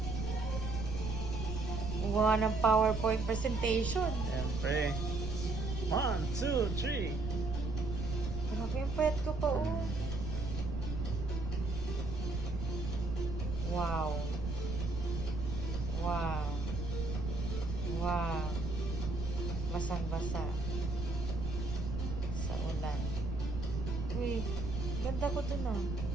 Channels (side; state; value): right; noise; rumble, 4 dB below the sound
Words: Gumawa ng PowerPoint presentation. Siyempre. 1, 2, 3. Grabe, ang payat ko pa oh. Wow. Wow. Wow. Basang-basa. Sa ulan. Uy, ganda ko dun ah.